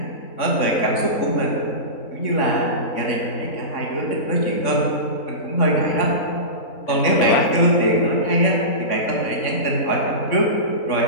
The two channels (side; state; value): right; late; 3.6 ms